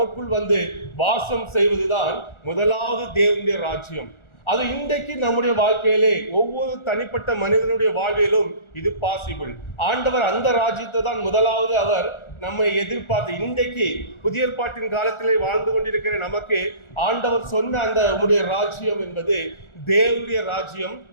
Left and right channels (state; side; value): late; right; 1.4 ms